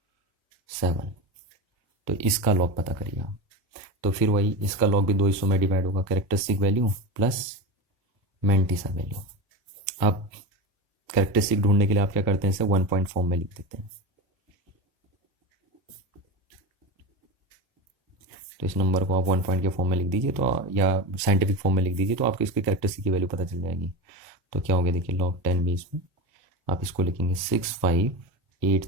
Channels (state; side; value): normal; both; correlation 0.23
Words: 7। तो इसका लॉग पता करिए आप। तो फिर वही इसका लॉग भी 2 हिस्सों में डिवाइड होगा, characteristic value plus mantissa value. आप कैरेक्टरिस्टिक ढूंढने के लिए आप क्या करते हैं, इसे 1 पॉइंट फॉर्म में लिख देते हैं। तो इस नंबर को आप 1 पॉइंट के फॉर्म में लिख दीजिए, तो या साइंटिफिक फॉर्म में लिख दीजिए, तो आपको इसकी कैरेक्टरिस्टिक की वैल्यू पता चल जाएगी। तो क्या हो गया देखिए, log 10 बेस में आप इसको लिखेंगे